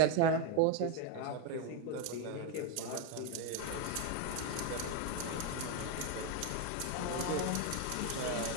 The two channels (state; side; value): different; both; correlation 0.01